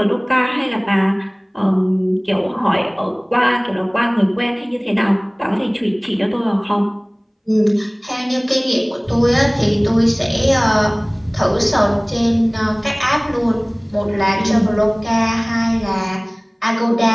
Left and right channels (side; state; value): both; identical; correlation 1.00